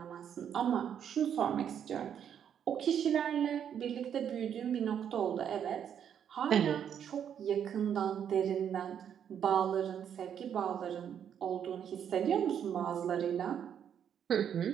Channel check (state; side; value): quieter; left; 8.7 dB